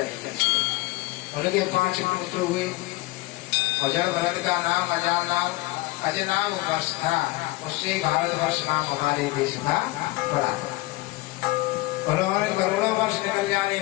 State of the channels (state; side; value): quieter; right; 20.5 dB